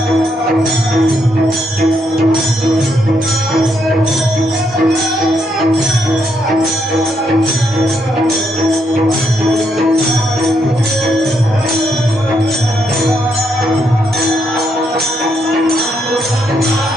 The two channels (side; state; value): both; normal; correlation 0.77